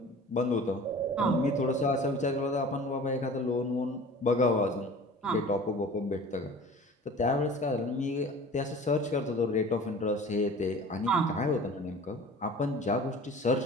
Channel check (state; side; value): normal; both; correlation 0.42